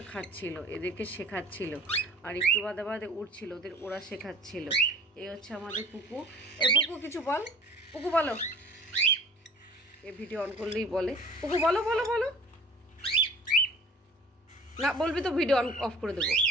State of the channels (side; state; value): both; normal; correlation 0.47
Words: খাচ্ছিল, এদেরকে শেখাচ্ছিল, আর একটু বাদে বাদে উঠছিল, ওরা শেখাচ্ছিল। এই হচ্ছে আমাদের পুকু। এ পুকু কিছু বল, পুকু বলো। এ ভিডিও অন করলেই বলে, পুকু বলো বলো বলো। না বলবি তো ভিডিও অন অফ করে দেবো।